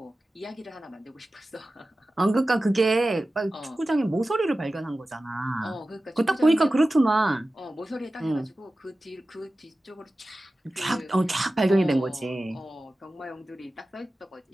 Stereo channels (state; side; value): normal; both; correlation 0.95